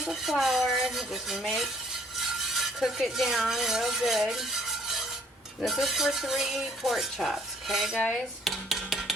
of flour. Just cook it down real good. This is for 3 pork chops, okay guys?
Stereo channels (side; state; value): both; normal; correlation 0.60